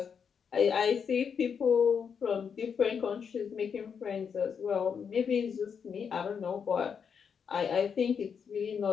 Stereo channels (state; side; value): quieter; right; 6.8 dB